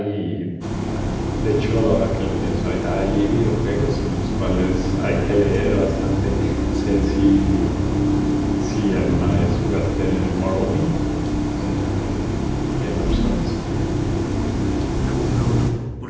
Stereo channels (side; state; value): both; identical; correlation 1.00